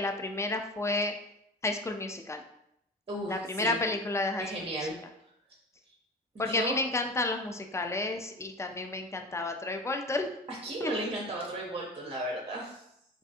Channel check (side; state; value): both; normal; correlation 0.32